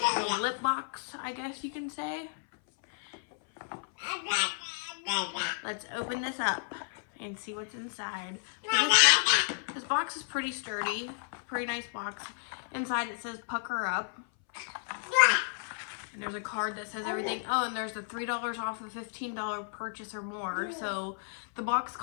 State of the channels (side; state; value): right; silent; 56 dB below the other